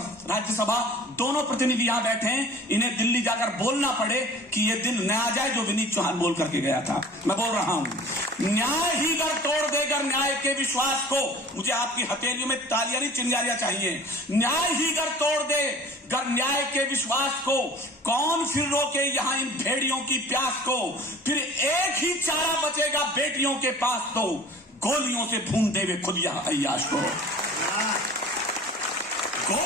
राज्यसभा दोनों प्रतिनिधि यहां बैठे हैं, इन्हें दिल्ली जाकर बोलना पड़े कि यह दिन न आ जाए जो विनीत चौहान बोल करके गया था। मैं बोल रहा हूं, न्याय ही गर तोड़ देगा न्याय के विश्वास को। मुझे आपकी हथेलियों में तालियां नहीं चिंगारियां चाहिए। न्याय ही गर तोड़ दे गर न्याय के विश्वास को। कौन फिर रोके यहां इन भेड़ियों की प्यास को। फिर एक ही चारा बचेगा बेटियों के पास, तो गोलियों से भून देवे खुद यह अय्याश को।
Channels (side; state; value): both; normal; correlation 0.45